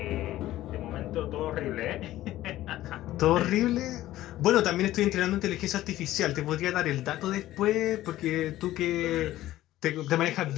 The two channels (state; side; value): quieter; right; 14.9 dB